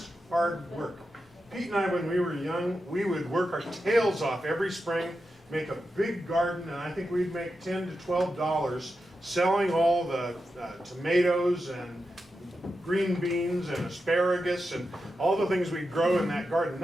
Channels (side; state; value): both; normal; correlation 0.89